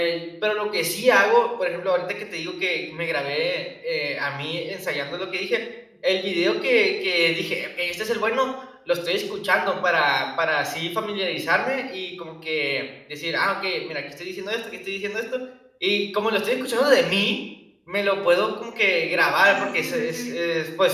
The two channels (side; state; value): both; identical; correlation 1.00